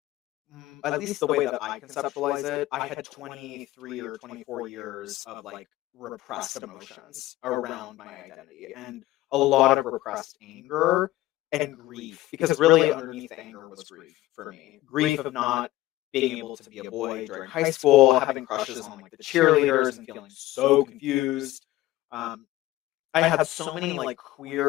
at least the way that I conceptualize it, I had 23 or 24 years of like repressed emotions around my identity and a lot of repressed anger and grief, because really underneath the anger was grief for me. Grief of not being able to be a boy during high school, having crushes on like the cheerleaders and feeling so confused. I had so many like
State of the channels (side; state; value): right; quieter; 16.4 dB